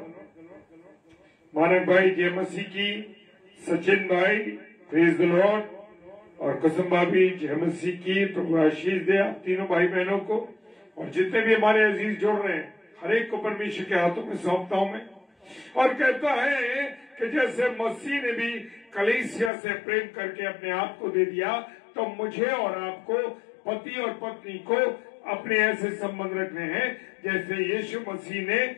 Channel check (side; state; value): right; drops out; at 19.5 s